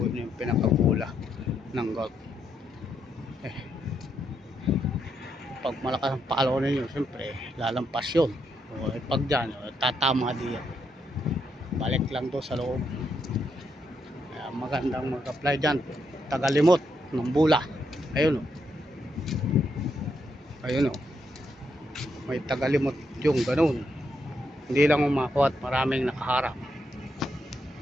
yung pinakabula ng golf. Pag malakas ang palo ninyo, siyempre lalampas yun. Pag dyan, tatama diyan. Balik lang to sa loob. Kaya magandang mag-apply dyan. Tagalimot ng bula. Ayun o. Ayun o. May tagalimot yung ganun. Hindi lang umakuha at maraming nakaharap.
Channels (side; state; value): both; normal; correlation 0.79